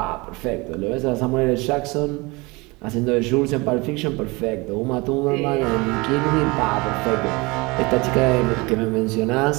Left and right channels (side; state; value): left; quieter; 24.9 dB